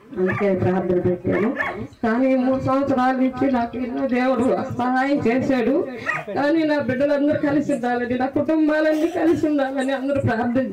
అందుకే ప్రార్థన పెట్టాను. కానీ 3 సంవత్సరాల నుంచి నాకు ఎన్నో దేవుడు సహాయం చేశాడు. కానీ నా బిడ్డలందరూ కలిసి ఉండాలని, నా కుటుంబాలన్నీ కలిసి ఉండాలని అందరూ ప్రార్థన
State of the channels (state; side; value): identical; both; correlation 1.00